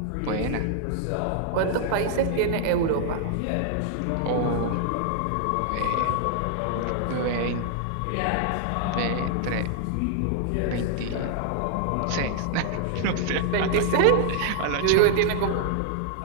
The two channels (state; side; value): different; both; correlation 0.00